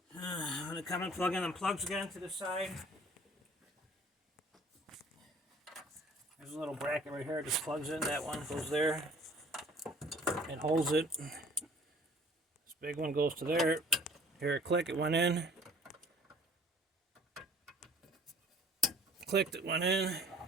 I'm going to come and plug in them plugs again to the side. There's a little bracket right here, it just plugs in, that one goes there. It holds it. This big one goes to there. Here it click, it went in. Clicked, it went in.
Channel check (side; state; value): both; normal; correlation 0.53